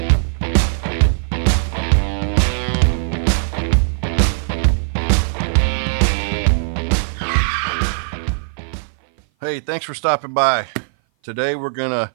Hey, thanks for stopping by. Today we're gonna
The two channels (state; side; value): silent; left; 57 dB below the other